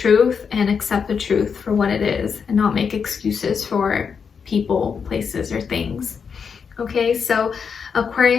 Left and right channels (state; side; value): quieter; right; 6.2 dB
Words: and accept the truth for what it is and not make excuses for people, places, or things. Okay, so